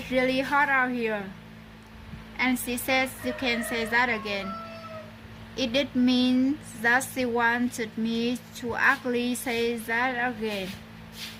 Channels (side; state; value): both; identical; correlation 1.00